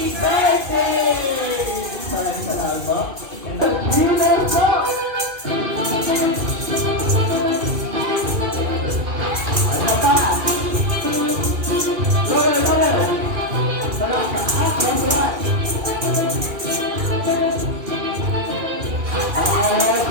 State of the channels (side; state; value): left; late; 2.1 ms